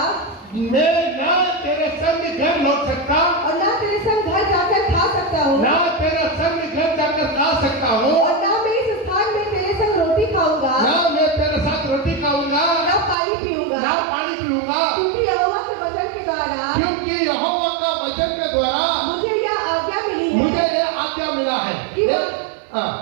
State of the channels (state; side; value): drops out; left; at 13.2 s